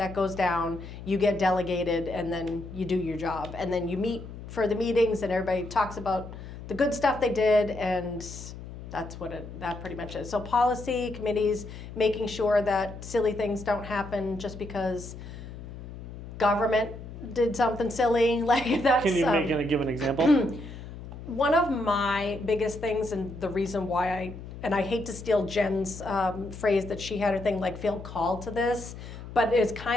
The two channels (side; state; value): left; noise; hum, 12 dB below the sound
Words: goes down, you get delegated, and then you do your job. And then you meet for the meetings, and everybody talks about the good stuff they did, and that's that pretty much is. So policy, committees, making sure that silly things don't happen just because government did something silly. Like that's. Can you give an example? One of my biggest things, and the reason why I hate to steal Jen's phrase that she had her thing, like feel called to this, but it's